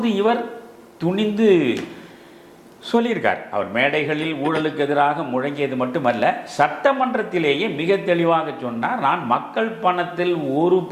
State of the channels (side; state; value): both; identical; correlation 1.00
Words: இவர் துணிந்து சொல்லியிருக்கார். அவர் மேடைகளில் ஊழலுக்கு எதிராக முழங்கியது மட்டுமல்ல, சட்டமன்றத்திலேயே மிக தெளிவாக சொன்னார், நான் மக்கள் பணத்தில் ஒரு